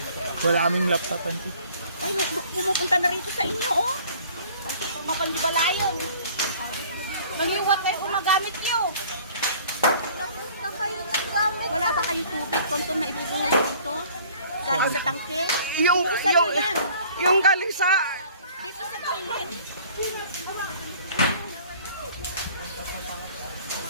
Wala kaming laptop, auntie. Ay, pumupunta na rito sa inyo, oh. Mapandibalayon. Nangiwat na yung gumagamit nyo. Nagpunta kayo ng gamit. Wala ba kayong tubig, Tonton, na ibubuhos dito? Galing sa tangke? yung galing sa... Dito sa toilet.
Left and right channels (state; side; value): inverted; both; correlation -0.52